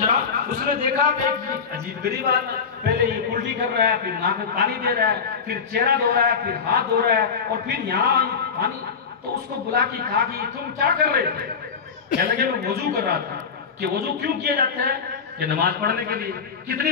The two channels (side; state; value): right; quieter; 6.0 dB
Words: उसने देखा कि अजीब गरीब आदमी, पहले ये उल्टी कर रहा है, फिर नाक में पानी दे रहा है, फिर चेहरा धो रहा है, फिर हाथ धो रहा है, और फिर यहाँ पानी। तो उसको बुला के कहा कि तुम क्या कर रहे थे? कह लगे मैं वजू कर रहा था। कि वजू क्यों किया जाता है? कि नमाज पढ़ने के लिए। कितनी